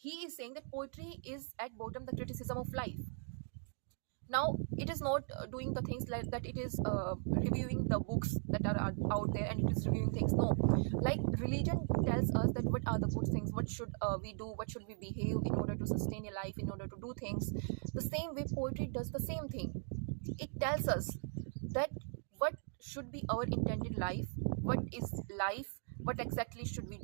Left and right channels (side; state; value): left; silent; 52 dB below the other